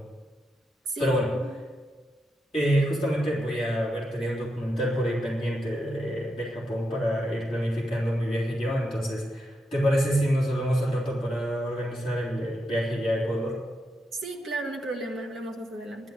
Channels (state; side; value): normal; both; correlation 0.84